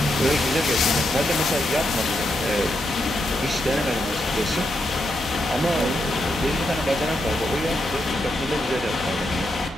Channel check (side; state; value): both; normal; correlation 0.82